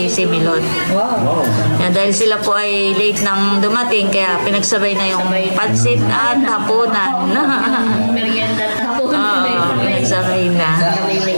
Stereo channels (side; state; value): both; inverted; correlation -1.00